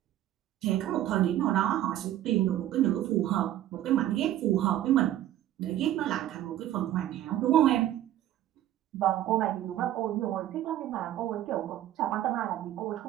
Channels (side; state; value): left; quieter; 12.9 dB